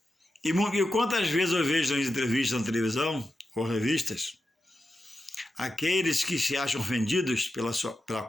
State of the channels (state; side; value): normal; both; correlation 0.90